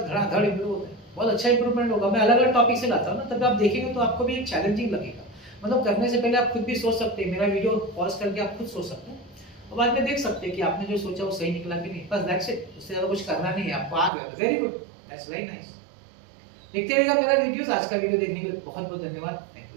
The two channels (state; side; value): drops out; left; at 14.1 s